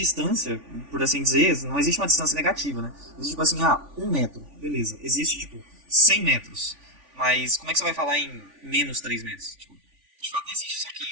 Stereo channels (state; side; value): late; left; 3.5 ms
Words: por assim dizer, não existe uma distância negativa, né? Existe tipo assim, 1 metro, beleza. Existe tipo 100 metros, mas como é que você vai falar em menos 3 metros? Tipo, de fato não existe. Só que